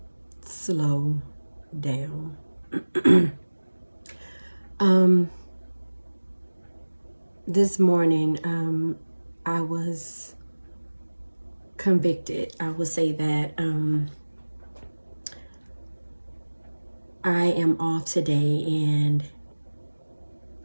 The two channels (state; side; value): inverted; both; correlation -1.00